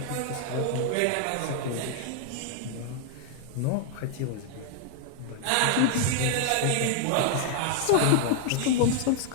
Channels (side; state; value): both; different; correlation 0.00